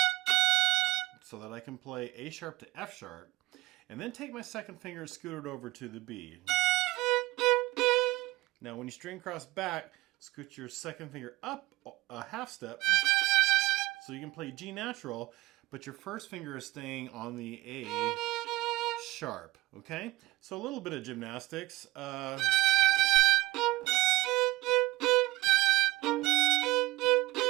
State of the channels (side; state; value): left; quieter; 18.8 dB